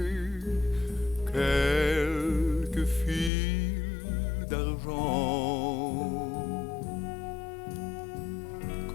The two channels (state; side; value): drops out; right; at 3.3 s